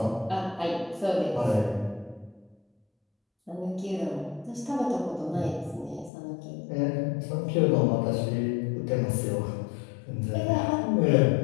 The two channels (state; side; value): drops out; right; at 6.1 s